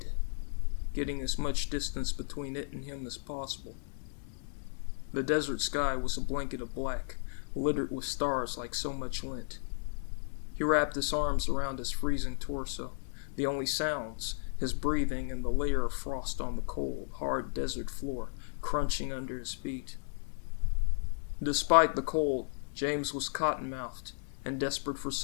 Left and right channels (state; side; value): silent; right; digital silence